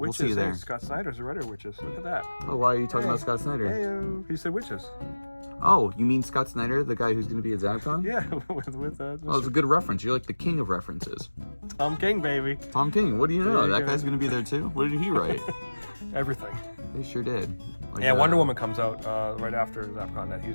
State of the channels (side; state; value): both; inverted; correlation -1.00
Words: see you there. Hey, Scott Snyder's a writer witches. Look at that. Oh, why are you talking about Scott Snyder? Hey, he said witches. Oh, you mean Scott Snyder, the guy who's going to be at ZappCon? Yeah, with Oh, it's a good reference. You're like the king of references. Tom King, baby. Tom King, what do you know? There you That go. guy's going to be there too? What did he write? Everything. He sure did. Like, Yeah, Wonder Woman comes out right after ZappCon that he's